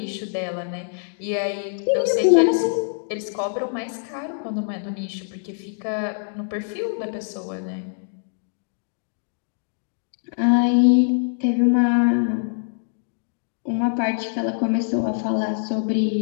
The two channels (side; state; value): right; silent; digital silence